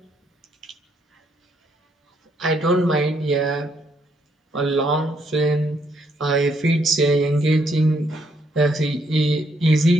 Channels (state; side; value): normal; both; correlation 0.72